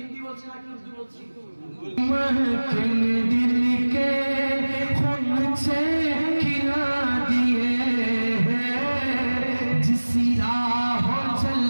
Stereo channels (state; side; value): inverted; both; correlation -1.00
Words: কি বলছি নাকি উর্দু বলছি? दिल के खून से खिला दिए हैं जिस राह चल